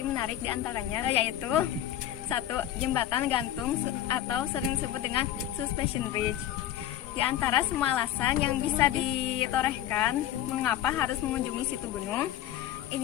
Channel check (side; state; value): right; quieter; 12.2 dB